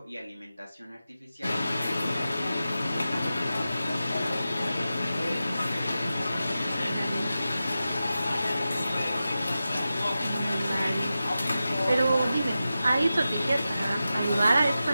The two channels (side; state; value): both; inverted; correlation -0.93